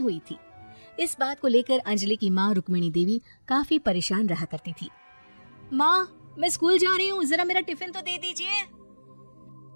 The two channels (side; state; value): both; inverted; correlation -1.00